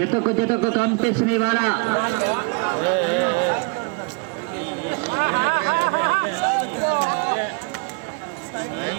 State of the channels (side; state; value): left; quieter; 33.0 dB